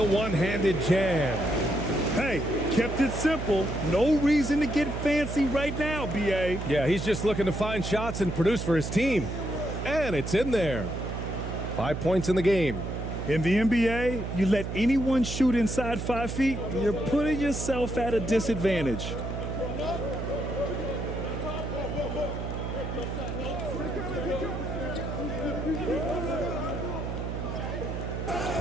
one-handed jam. Hey, kept it simple. No reason to get fancy right now, B.A. Yeah, he's just looking to find shots and produce for his team. And it's in there. 5 points in the game. In the NBA, you let anyone shoot inside 5 feet, you're putting yourself at a disadvantage.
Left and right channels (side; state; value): right; noise; hum, 5 dB below the sound